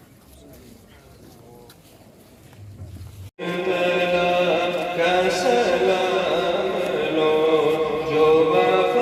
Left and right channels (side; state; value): both; identical; correlation 1.00